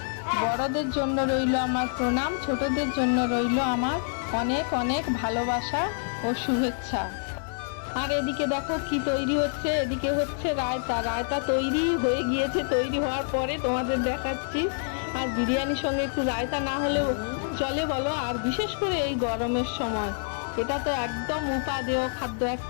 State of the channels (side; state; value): right; silent; 55 dB below the other